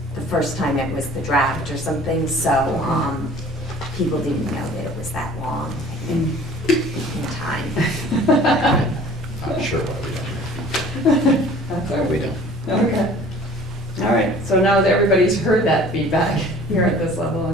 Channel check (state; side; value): normal; both; correlation 0.48